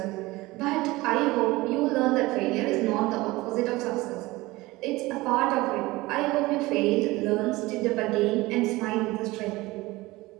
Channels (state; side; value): quieter; left; 20.4 dB